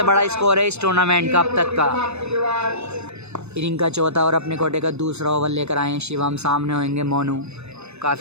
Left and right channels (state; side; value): late; left; 0.81 ms